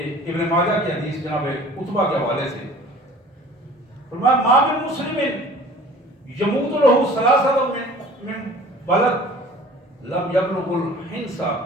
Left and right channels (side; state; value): both; normal; correlation 0.47